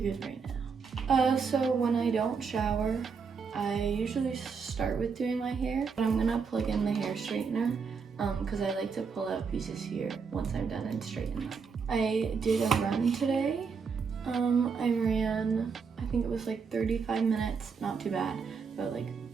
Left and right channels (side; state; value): left; quieter; 5.6 dB